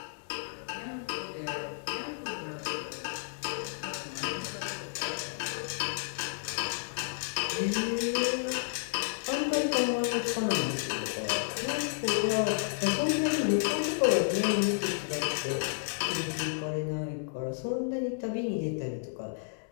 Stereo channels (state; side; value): silent; right; 57 dB below the other